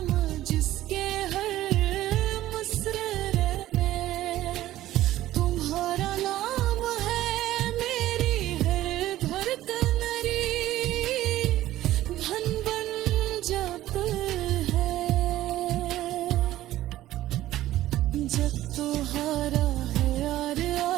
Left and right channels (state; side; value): quieter; left; 14.7 dB